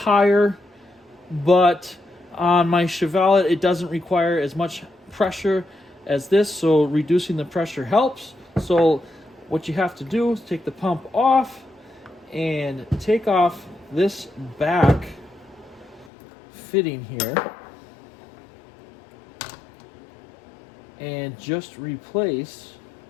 but on my Chevelle it doesn't require as much pressure as this, so reducing the pressure helps. So what you have to do is take the pump off and take off this back fitting here and just replace.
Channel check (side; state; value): right; drops out; at 16.1 s